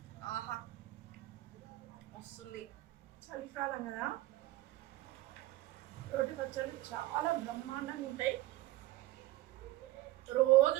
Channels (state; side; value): quieter; left; 17.2 dB